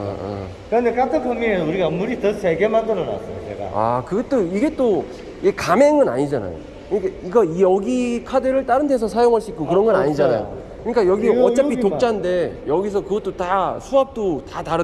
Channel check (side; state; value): both; identical; correlation 1.00